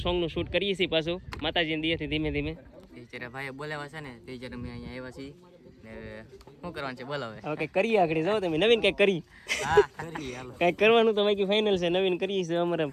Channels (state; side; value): identical; both; correlation 1.00